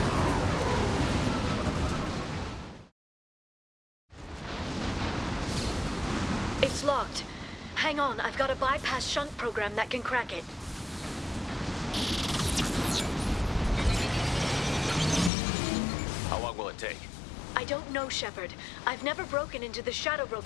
It's locked. Hang on, I've got a bypass shunt program that can crack it. How long will it take? I don't know, Shepard. I've never broken into the Shadow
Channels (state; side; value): drops out; right; at 15.3 s